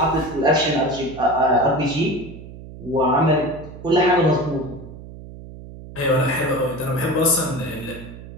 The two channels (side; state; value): right; noise; hum, 15 dB below the sound